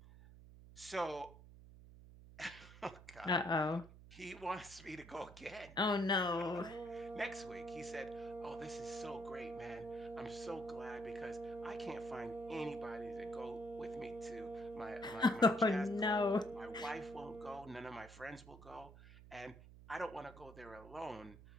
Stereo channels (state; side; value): noise; right; hum, 17 dB below the sound